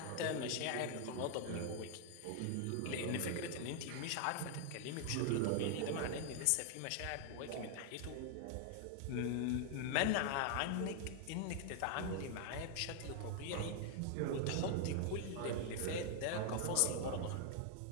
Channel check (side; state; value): both; different; correlation 0.00